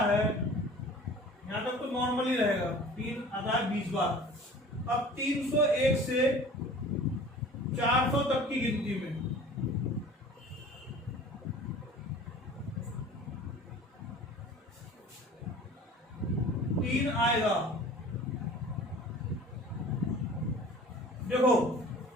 है। यहां तक तो नॉर्मली रहेगा। 3 आता है 20 बार। अब 301 से 400 तक की गिनती में 3 आएगा। देखो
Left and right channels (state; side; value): normal; both; correlation 0.44